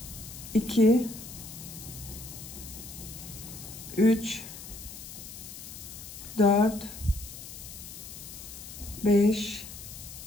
2, 3, 4, 5,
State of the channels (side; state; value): left; noise; hiss, 12 dB below the sound